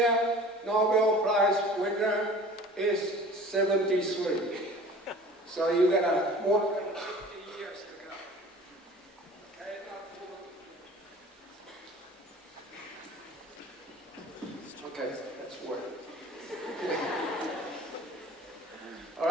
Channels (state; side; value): normal; both; correlation 0.44